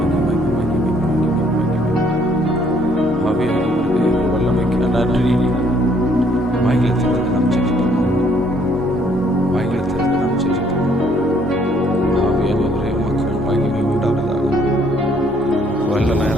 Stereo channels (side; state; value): both; normal; correlation 0.65